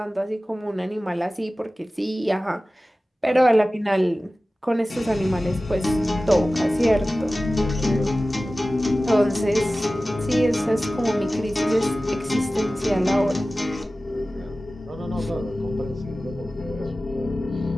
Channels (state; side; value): normal; both; correlation 0.96